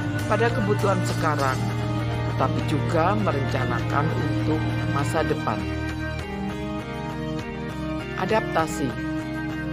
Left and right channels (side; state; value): both; identical; correlation 1.00